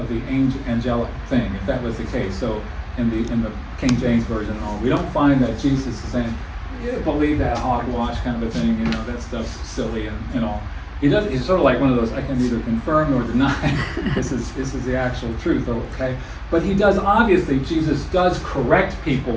the angelic thing, if that was the case. So in the King James version and all. We don't find that Jesus is saying, "You believe that hogwash kind of a thing, you know, that stuff's silly and all." He does. He's sort of like one of those, I can neither confirm nor deny. This is the actual truth, okay? But he does, obviously, Jesus does correct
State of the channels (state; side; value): identical; both; correlation 1.00